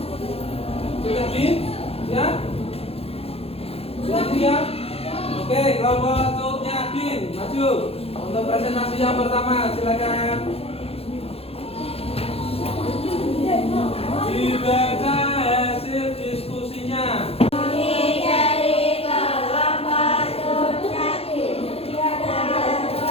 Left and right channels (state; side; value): late; right; 0.29 ms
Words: Sudah di? Siap? Sudah siap? Oke, kelompok Cut Nyak-din maju untuk presentasi yang pertama, silakan. Dibaca hasil diskusinya.